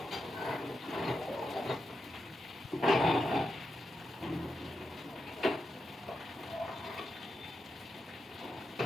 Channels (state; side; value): normal; both; correlation 0.87